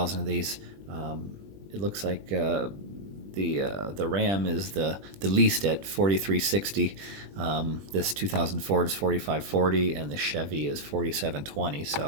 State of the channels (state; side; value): late; left; 20 ms